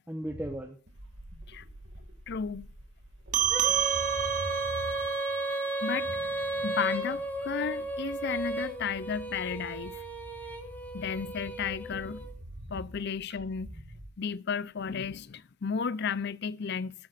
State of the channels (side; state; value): both; normal; correlation 0.34